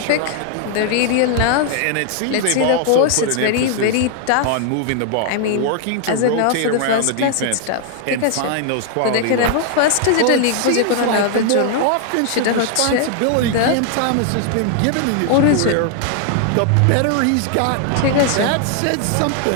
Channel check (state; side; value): different; both; correlation 0.00